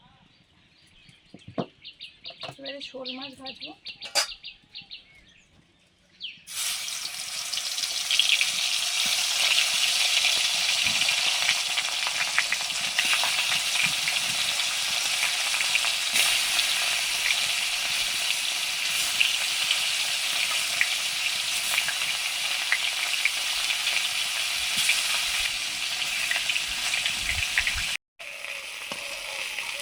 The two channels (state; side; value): identical; both; correlation 1.00